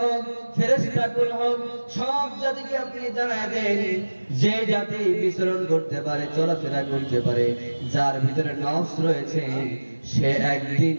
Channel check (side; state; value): both; inverted; correlation -1.00